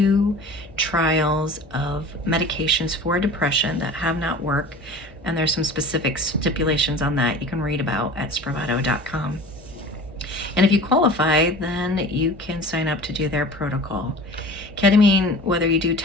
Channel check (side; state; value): both; normal; correlation 0.39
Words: trials of medications for depression that have not worked, and there's some specific stipulations on that you can read about at spravato.com. And if you qualify, then you can sign up to do their protocol. Ketamine, whether you do